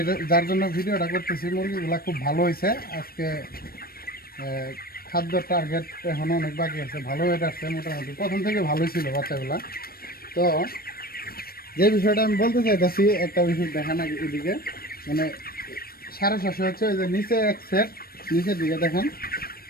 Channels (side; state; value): right; late; 0.44 ms